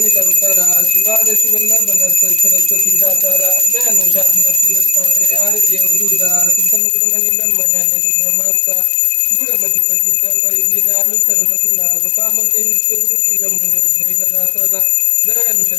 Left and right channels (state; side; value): drops out; right; at 6.8 s